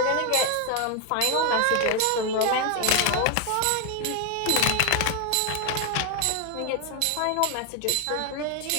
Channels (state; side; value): different; both; correlation 0.01